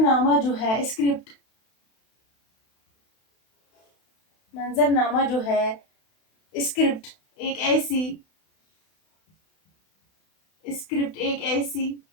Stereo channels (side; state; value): right; late; 32 ms